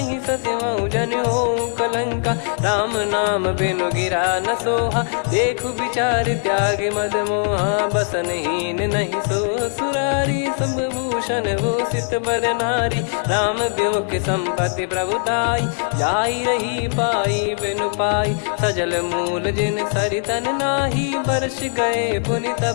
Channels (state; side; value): silent; right; 65 dB below the other